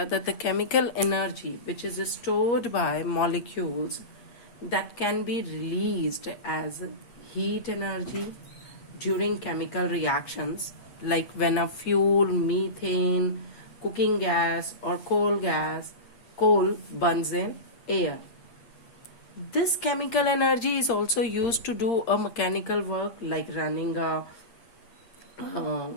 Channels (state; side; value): late; right; 8.5 ms